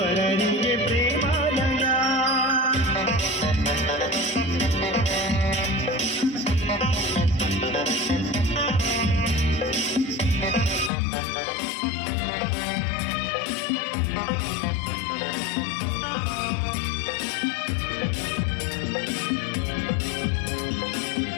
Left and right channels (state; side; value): drops out; right; at 10.9 s